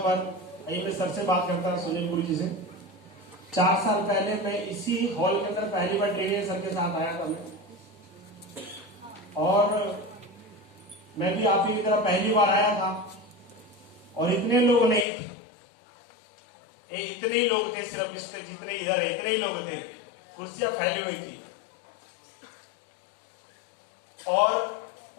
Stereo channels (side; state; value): right; drops out; at 15.1 s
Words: मैं सर से बात करता हूँ, सुनीलपुरी जी से। 4 साल पहले मैं इसी हॉल के अंदर पहली बार ट्रेनिंग सर के साथ आया था मैं, और मैं भी आप ही की तरह पहली बार आया था और इतने लोग नहीं थे, इतने ही लोग थे, सिर्फ जितने इधर है इतने ही लोग थे, कुर्सियां फैली हुई थी। और